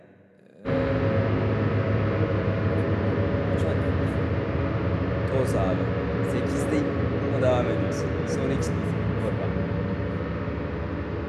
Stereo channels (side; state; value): both; identical; correlation 1.00